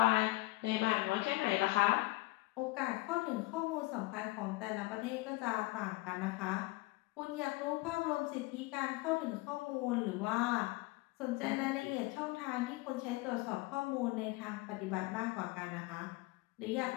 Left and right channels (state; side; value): quieter; right; 21.4 dB